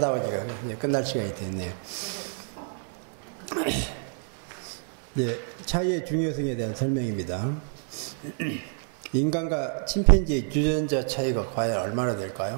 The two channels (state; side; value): silent; left; 55 dB below the other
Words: 보니까 이제 끝날 시간이 됐네요. 이제 차이의 중요성에 대한 설명입니다. 인간과 침팬지의 유전자 차이가 과연 얼마나